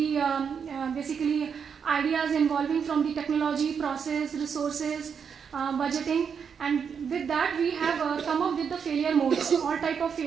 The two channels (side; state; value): left; quieter; 6.8 dB